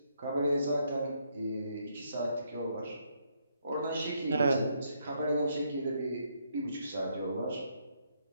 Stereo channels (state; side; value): inverted; both; correlation -0.74